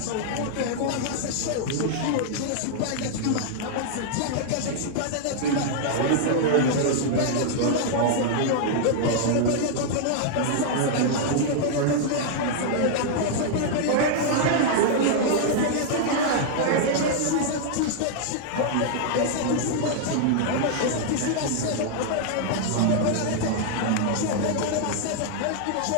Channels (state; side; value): different; both; correlation -0.01